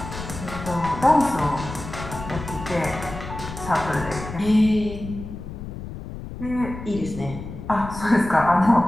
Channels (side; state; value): left; noise; rumble, 10 dB below the sound